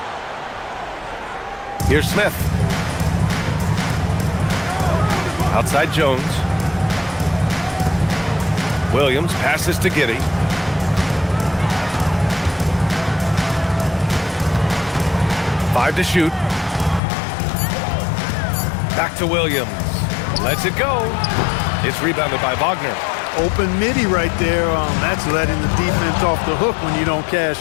Here's Smith. Outside Jones. Williams passes to Giddey. Five to shoot. Back to Williams. Lets it go. It's rebounded by Wagner. Open midi right there. That's letting the defense off the hook when you don't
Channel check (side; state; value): right; drops out; at 17.0 s